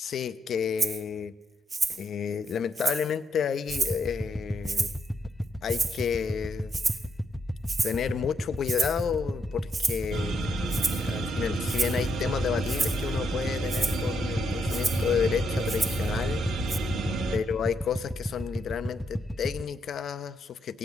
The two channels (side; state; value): both; normal; correlation 0.78